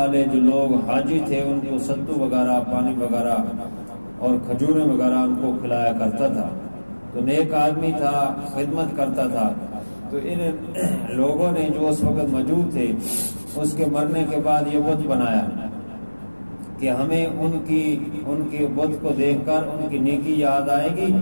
جو لوگ حاجی تھے ان کو ستو وغیرہ پانی وغیرہ اور کھجوریں وغیرہ ان کو کھلایا کرتا تھا. تو نیک آدمی تھا, خدمت کرتا تھا. تو ان لوگوں نے جو اس وقت موجود تھے اس کے مرنے کے بعد یہ بت بنایا کہ ہمیں ان کے بت کو دیکھ کر ان کی نیکی یاد آئے گی,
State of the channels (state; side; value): inverted; both; correlation -1.00